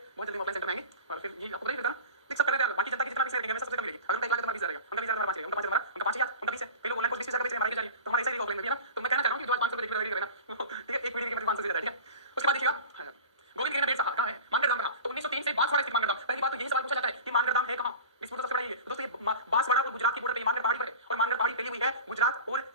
बहुत जल्दी ऑफलाइन सेंटर में आएंगे और फिर ये आपको नहीं पता देख सब कर रहे हैं, बाकी जनता की जितना भी रहेगा मैं सबसे कम मिलेगी, अगर मैं 1 लाख तुम्हारा 20,000 रहेगा, उनका 20,000 हमारा 5 रहेगा, उनका 5 हमारा, उनका 5,000 उनका 20 है, कई लोग ऑनलाइन कोर्स 20,000 बेच रहे हैं, हमारी जा रही है, तो हमारा ऐसा ही ऑफलाइन में भी है ना, तो मैं कहना चाह रहा हूं कि जो आज 500 रुपए देख रहे हैं ना, ठीक है एक वीडियो की कीमत 500 से ज्यादा है, ठीक है। उसके बाद देखिएगा गोविंद गिरी ने बेट कहां है मानगढ़ धाम कहां, तो 1903 से बांसवाड़ा स्थित मानगढ़ धाम, पहली बात तो यही सवाल पूछा जाता है कि मानगढ़ धाम है कहां, डिस्प्यूट सबसे बड़ा ये दोस्तों, ये बांसवाड़ा और गुजरात की बॉर्डर पे मानगढ़ पहाड़ी पर है और मानगढ़ पहाड़ी फैली हुई है गुजरात और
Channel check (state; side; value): inverted; both; correlation -0.35